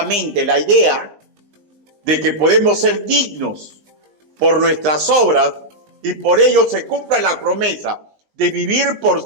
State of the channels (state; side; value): late; left; 19 ms